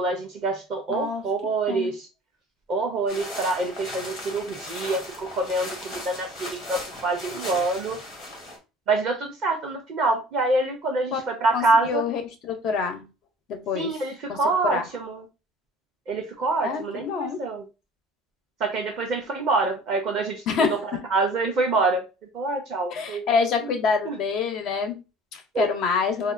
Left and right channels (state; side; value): normal; both; correlation 0.46